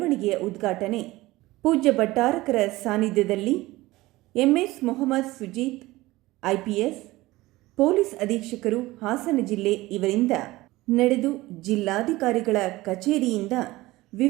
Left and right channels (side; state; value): left; quieter; 19.0 dB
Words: ಉದ್ಘಾಟನೆ ಪೂಜ್ಯ ಭಟ್ಟಾರಕರ ಸಾನ್ನಿಧ್ಯದಲ್ಲಿ MS Mohammed Sujeeth IPS police ಅಧೀಕ್ಷಕರು ಹಾಸನ ಜಿಲ್ಲೆ ಇವರಿಂದ ನಡೆದು ಜಿಲ್ಲಾಧಿಕಾರಿಗಳ ಕಚೇರಿಯಿಂದ